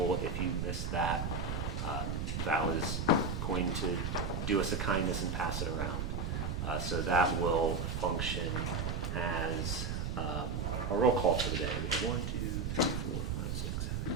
If you missed that, Val is going to do us a kindness and pass it around. So that will function as a roll call for the day. We have 1, 2, 3, 4, 5, 6, 7.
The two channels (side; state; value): right; noise; rumble, 1 dB below the sound